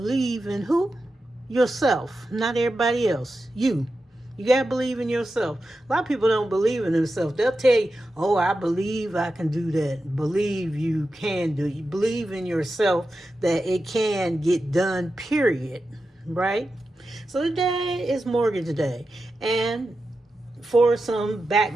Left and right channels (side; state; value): both; normal; correlation 0.91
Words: in who? Yourself, not everybody else. You. You got to believe in yourself. A lot of people don't believe in themselves. They'll tell you, oh, I believe I can do that. Believe you can do it. You believe in yourself that it can get done, period. Right? So today is Mortgage Day. And for some